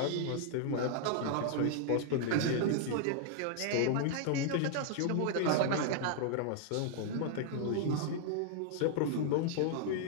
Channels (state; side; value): different; both; correlation -0.01